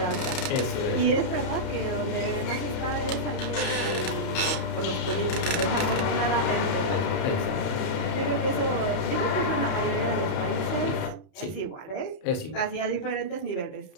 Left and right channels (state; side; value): late; right; 31 ms